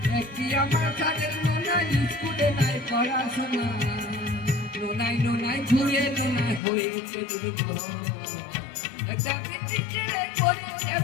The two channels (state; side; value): drops out; right; at 6.6 s